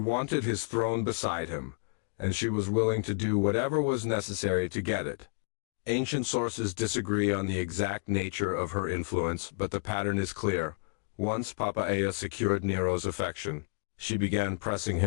his throne beside him, and she was willing to do whatever was necessary to get it. Ancient sources disagree on the exact nature of her influence, but the pattern is clear. Once Poppaea secured Nero's affection, she began pressing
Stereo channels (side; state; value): right; silent; digital silence